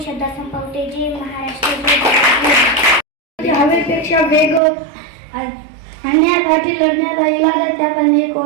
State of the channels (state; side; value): drops out; left; at 4.6 s